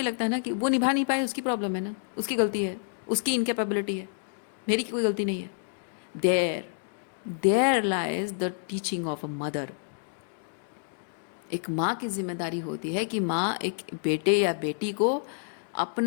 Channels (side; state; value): right; silent; digital silence